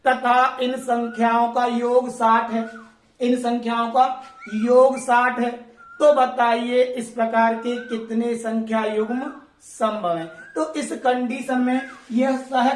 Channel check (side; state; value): both; identical; correlation 1.00